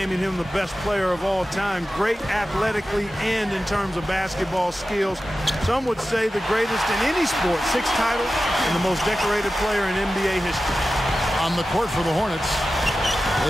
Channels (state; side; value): normal; both; correlation 0.94